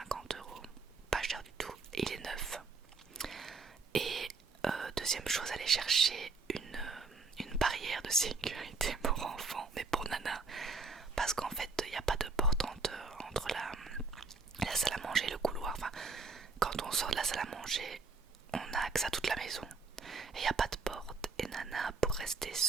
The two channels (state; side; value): quieter; left; 4.1 dB